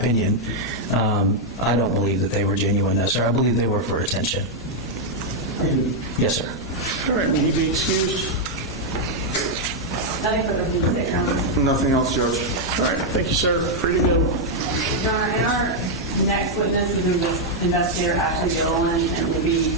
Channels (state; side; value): normal; both; correlation -0.02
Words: I don't believe that they were genuine, no, sir. I believe they were for attention. Yes, sir. All right, will he be excused? Nothing further from the Your Honor. Nothing else, Judge? All right, thank you, sir. Free to go. Your Honor, and our next witness is investigator Ashley Gilliland, and